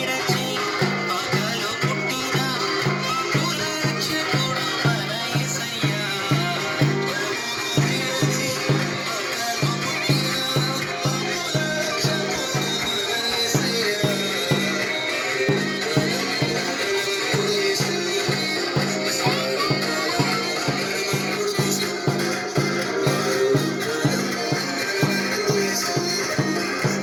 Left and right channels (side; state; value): both; identical; correlation 1.00